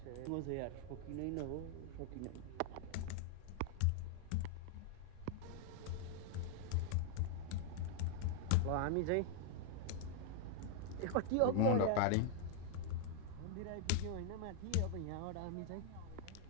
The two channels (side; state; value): both; different; correlation -0.01